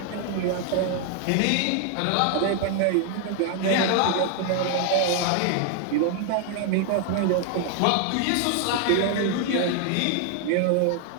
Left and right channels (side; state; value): both; different; correlation 0.00